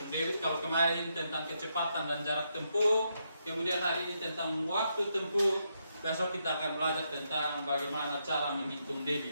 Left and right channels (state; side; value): inverted; both; correlation -0.80